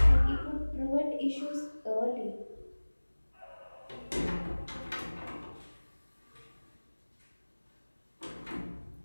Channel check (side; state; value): both; inverted; correlation -1.00